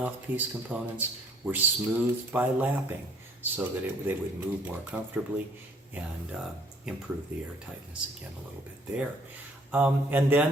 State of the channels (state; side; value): normal; both; correlation 0.60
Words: components were smoothed by lapping so that they would move more comfortably and improve the airtightness again a little bit there. And